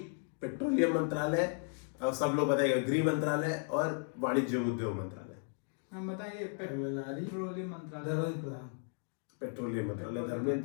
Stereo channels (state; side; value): silent; right; 54 dB below the other